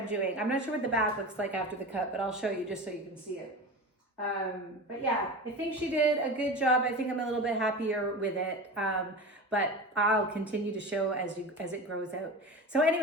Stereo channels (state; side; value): normal; both; correlation 0.29